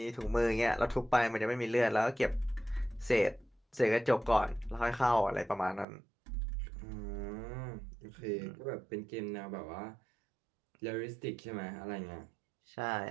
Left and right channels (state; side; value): drops out; left; at 5.9 s